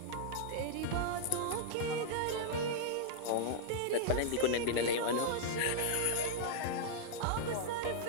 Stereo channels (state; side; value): different; both; correlation -0.01